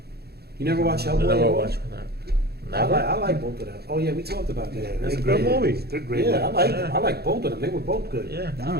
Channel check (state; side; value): late; left; 0.46 ms